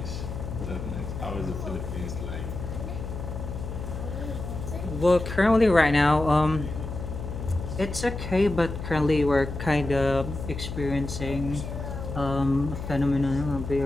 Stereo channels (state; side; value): noise; left; hum, 7 dB below the sound